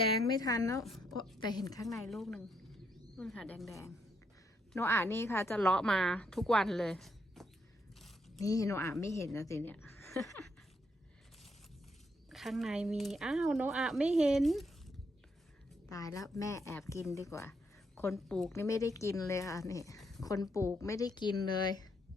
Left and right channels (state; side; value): normal; both; correlation 0.75